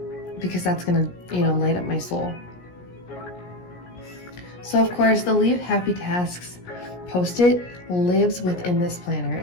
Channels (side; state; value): right; late; 17 ms